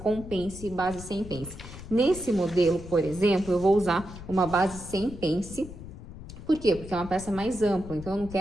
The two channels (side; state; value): left; noise; rumble, 13 dB below the sound